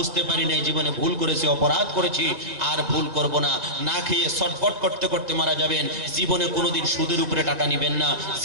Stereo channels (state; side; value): late; left; 1.9 ms